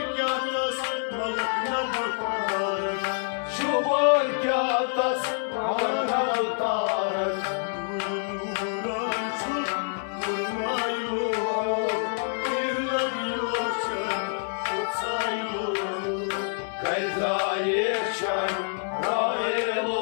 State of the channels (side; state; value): right; silent; digital silence